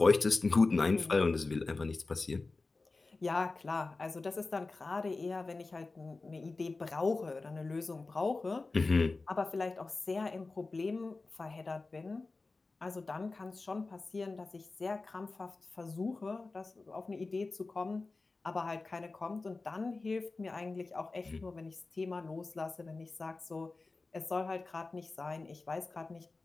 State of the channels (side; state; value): right; quieter; 3.6 dB